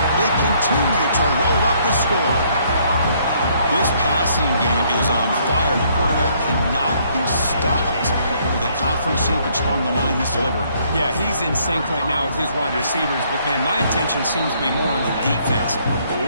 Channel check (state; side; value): inverted; both; correlation -0.66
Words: They continue to roll up the score. This passing game is on fire. The quarterback cannot be stopped. For the conference championship on the line, he's delivering. Yeah, he's in sync right now with his wide receivers. But, man, my attention seems to be more on the defense.